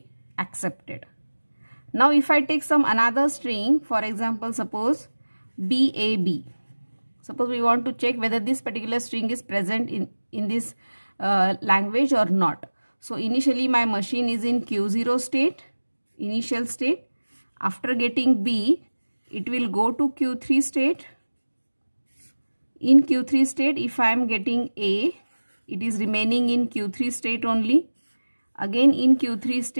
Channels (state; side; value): inverted; both; correlation -1.00